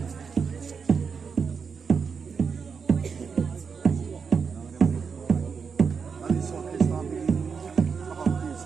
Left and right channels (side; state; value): left; quieter; 5.8 dB